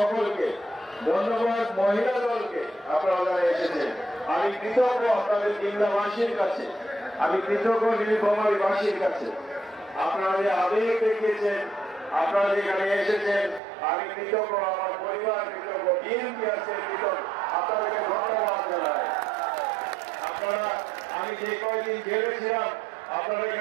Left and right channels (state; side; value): drops out; left; at 13.6 s